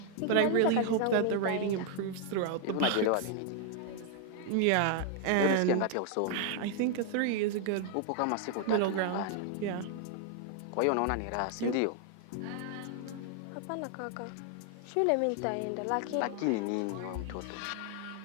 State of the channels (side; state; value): both; different; correlation 0.00